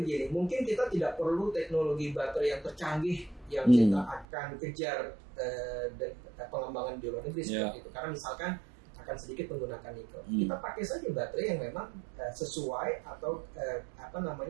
begini, mungkin kita tidak perlu teknologi baterai yang tercanggih yang kita akan kejar pengembangan di luar negeri seperti itu. Karena misalkan akan sedikit menggunakan nikel. Kita pakai saja baterai yang memang sesuai atau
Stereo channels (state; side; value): drops out; left; at 4.2 s